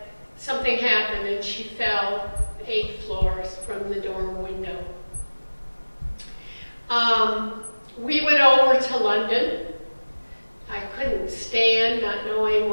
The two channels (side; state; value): both; inverted; correlation -1.00